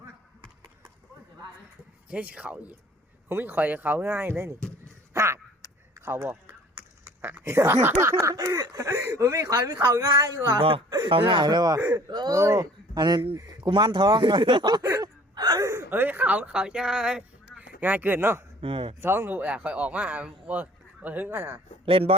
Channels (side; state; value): both; normal; correlation 0.52